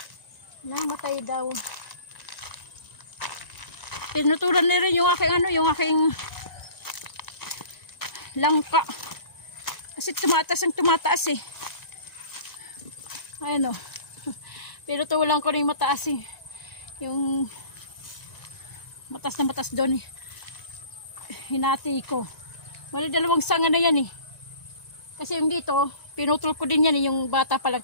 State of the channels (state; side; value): late; right; 1.9 ms